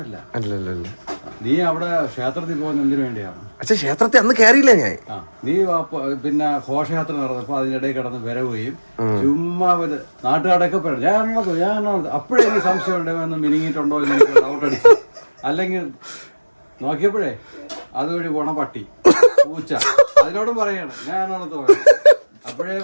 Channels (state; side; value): inverted; both; correlation -1.00